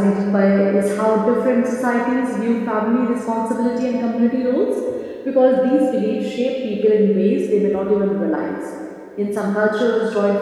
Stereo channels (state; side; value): identical; both; correlation 1.00